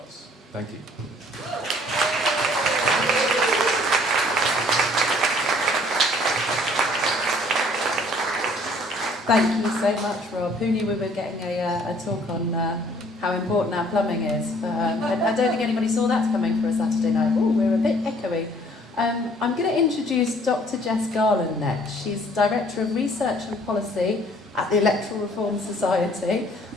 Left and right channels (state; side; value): normal; both; correlation 0.58